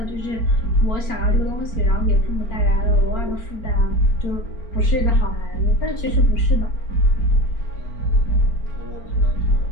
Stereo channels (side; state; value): right; late; 4.4 ms